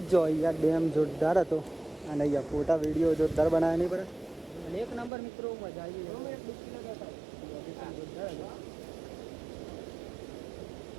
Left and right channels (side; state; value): left; drops out; at 5.1 s